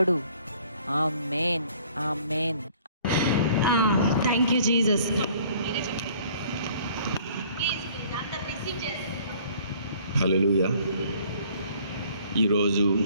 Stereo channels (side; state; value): both; inverted; correlation -0.55